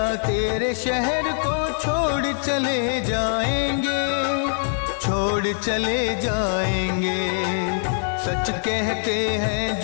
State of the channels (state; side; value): silent; right; digital silence